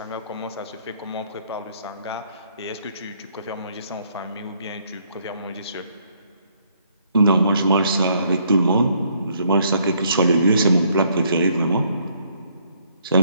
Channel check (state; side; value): inverted; both; correlation -0.68